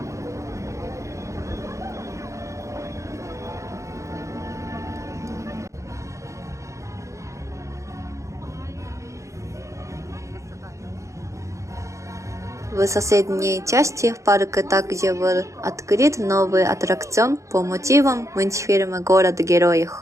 В соседней части парка также был открыт новый аттракцион по мотивам мультфильма «Город героев».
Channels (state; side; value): late; left; 0.15 ms